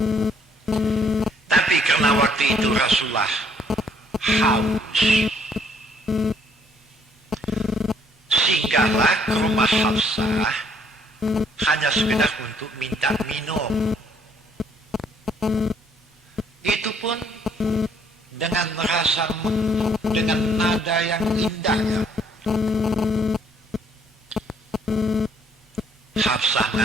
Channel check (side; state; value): both; normal; correlation 0.65